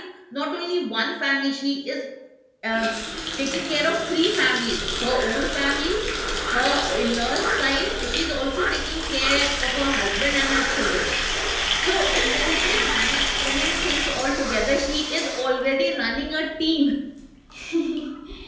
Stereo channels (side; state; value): both; identical; correlation 1.00